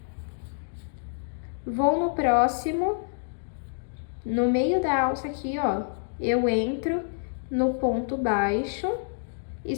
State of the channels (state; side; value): silent; right; digital silence